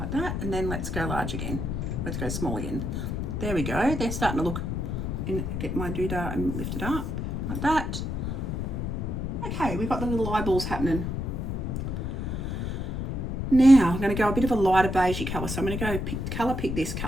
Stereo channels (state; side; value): noise; left; rumble, 3 dB below the sound